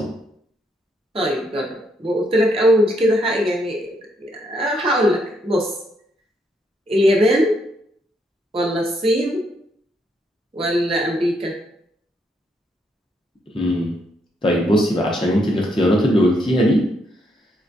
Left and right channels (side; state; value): both; normal; correlation 0.75